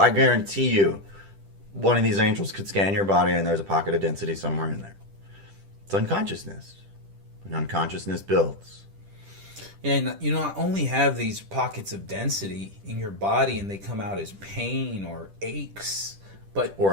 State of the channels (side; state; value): left; late; 10 ms